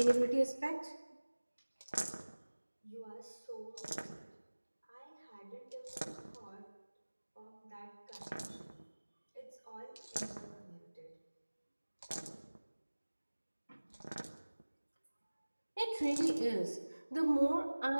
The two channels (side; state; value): both; inverted; correlation -1.00